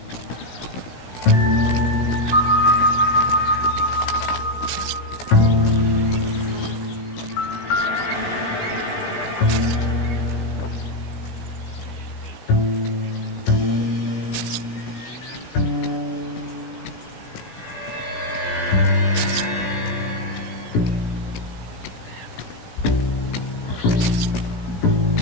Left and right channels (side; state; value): right; late; 17 ms